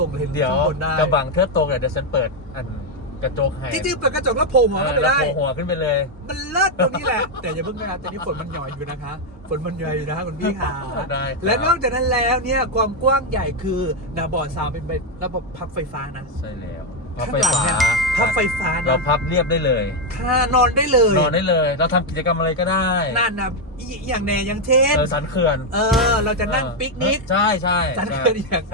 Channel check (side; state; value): both; normal; correlation 0.03